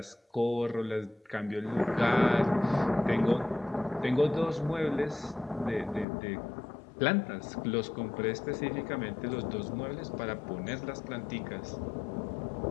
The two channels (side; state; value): right; drops out; at 6.1 s